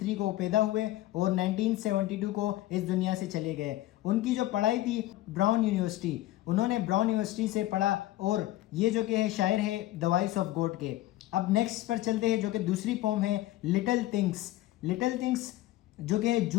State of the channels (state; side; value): quieter; right; 15.8 dB